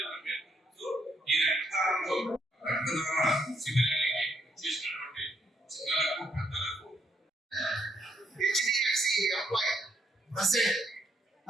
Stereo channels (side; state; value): both; normal; correlation 0.74